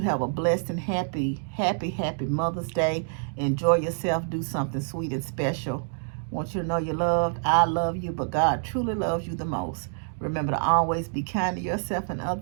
have a blessed and happy Mother's Day. Enjoy yourself. Do something sweet and special. Want you to know you're loved. I love you, but God truly loves you the most. Remember to always be kind to yourself and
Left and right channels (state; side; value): silent; left; digital silence